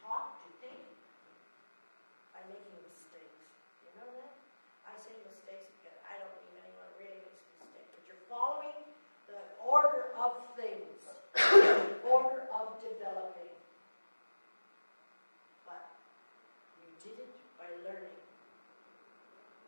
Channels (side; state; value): both; inverted; correlation -1.00